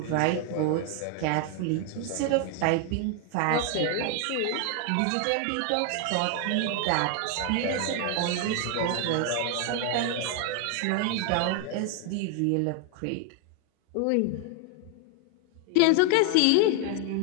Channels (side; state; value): both; different; correlation 0.00